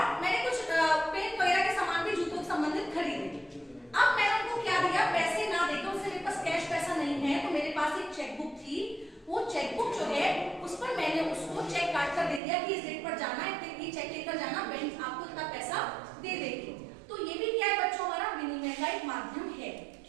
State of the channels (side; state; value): left; drops out; at 12.4 s